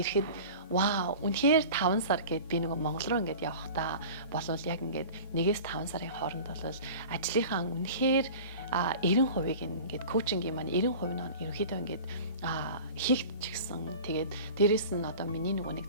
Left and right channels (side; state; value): both; inverted; correlation -0.38